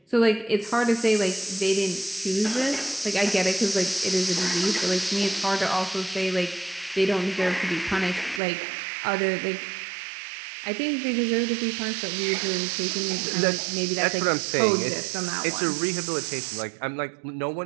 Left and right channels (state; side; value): drops out; left; at 8.4 s